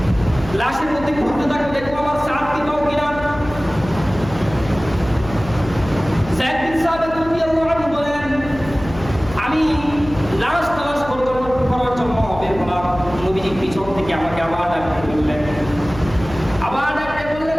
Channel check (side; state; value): left; noise; hum, 13 dB below the sound